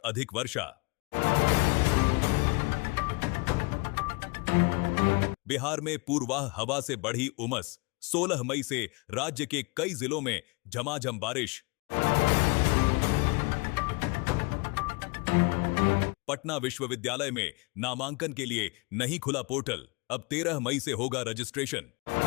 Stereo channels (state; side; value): quieter; right; 27.4 dB